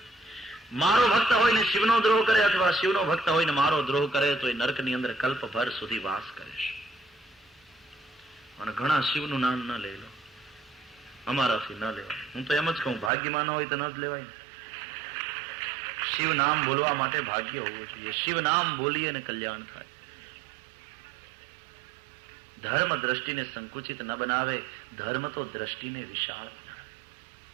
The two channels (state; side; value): drops out; left; at 13.1 s